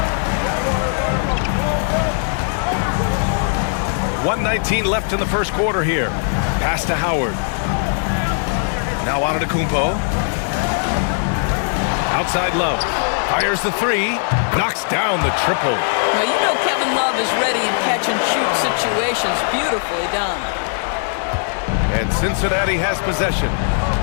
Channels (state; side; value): silent; right; 64 dB below the other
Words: 1:19 left in the first quarter here. Pass to Howard. Now Antetokounmpo. Outside Love. Fires the 3. Knocks down the triple. Well, you know Kevin Love is ready in catch-and-shoot situations. Beautifully done. And Cincinnati has possession.